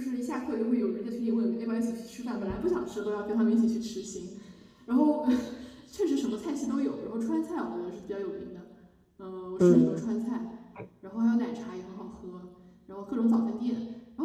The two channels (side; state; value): both; identical; correlation 1.00